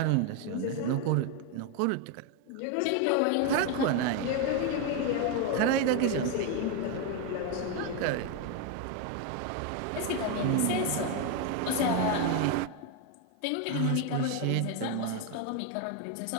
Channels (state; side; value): different; both; correlation 0.01